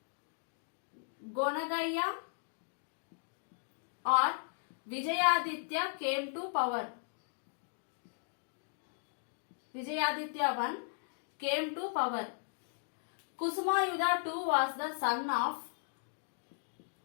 Gonagaya or Vijayaditya came to power. Vijayaditya I came to power. Kusumayuddha II was the son of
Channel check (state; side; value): silent; right; digital silence